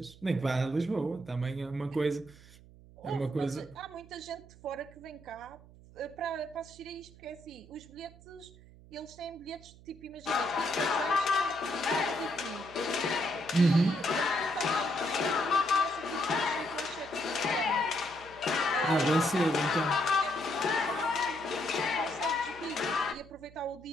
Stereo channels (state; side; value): noise; right; hum, 22 dB below the sound